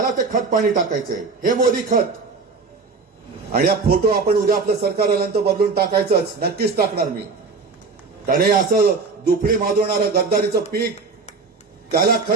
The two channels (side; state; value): left; quieter; 4.4 dB